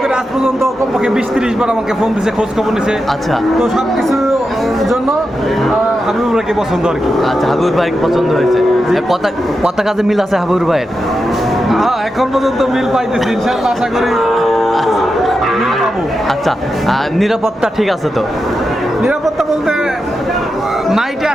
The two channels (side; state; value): both; normal; correlation 0.88